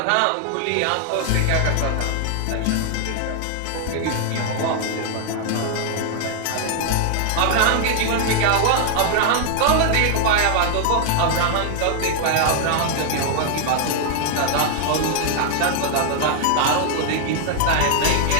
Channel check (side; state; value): both; different; correlation 0.00